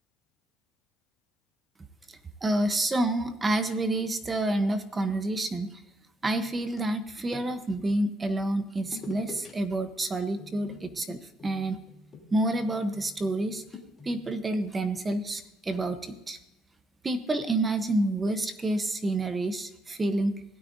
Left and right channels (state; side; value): normal; both; correlation 0.78